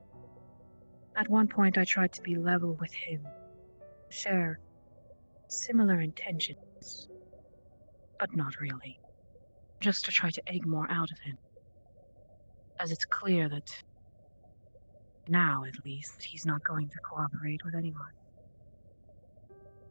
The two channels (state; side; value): inverted; both; correlation -1.00